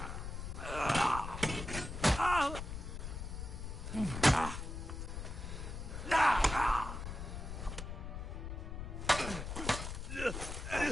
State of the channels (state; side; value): noise; left; rumble, 6 dB below the sound